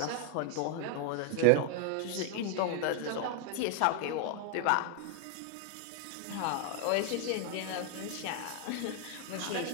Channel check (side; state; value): both; different; correlation 0.00